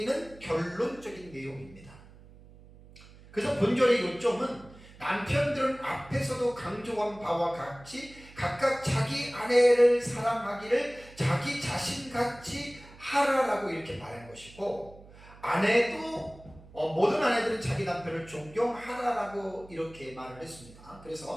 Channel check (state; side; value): noise; right; hum, 21 dB below the sound